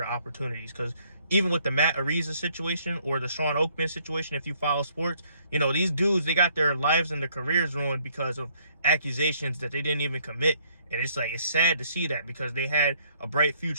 opportunities. Because even with the Matt Ariza situation or the Sean Oakman situation, if you follow sports, these dudes, they got their lives and their careers ruined because of accusations that they didn't even commit. And it's sad to see that, because they had a bright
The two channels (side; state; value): both; inverted; correlation -0.65